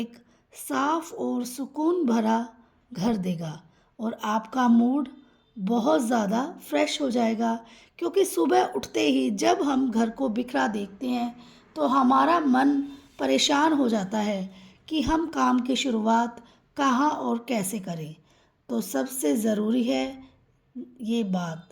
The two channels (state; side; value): identical; both; correlation 1.00